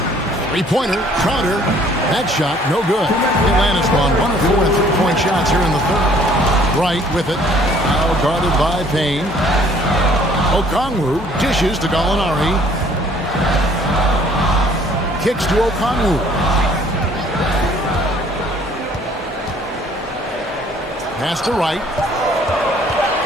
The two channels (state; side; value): normal; both; correlation 0.58